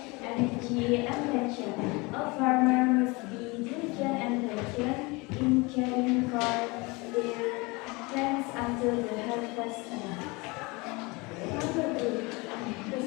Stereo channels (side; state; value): right; quieter; 25.9 dB